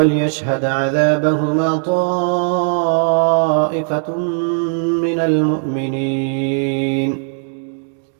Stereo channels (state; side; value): silent; left; 66 dB below the other